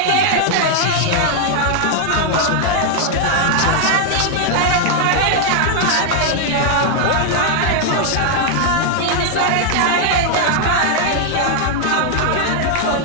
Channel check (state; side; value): different; both; correlation 0.00